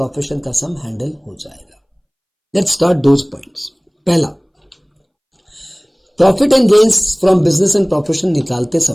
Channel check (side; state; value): both; identical; correlation 1.00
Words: का सम हैंडल हो जाएगा। Let's start those points. पहला, profit and gains from business and profession निकालते